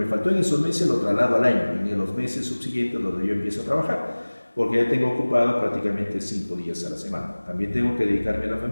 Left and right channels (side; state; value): both; inverted; correlation -1.00